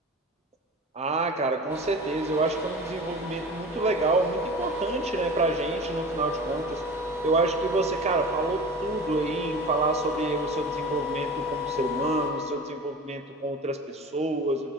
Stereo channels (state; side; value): normal; both; correlation 0.35